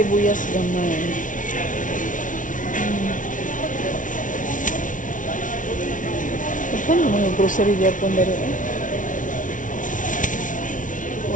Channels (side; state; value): right; late; 0.38 ms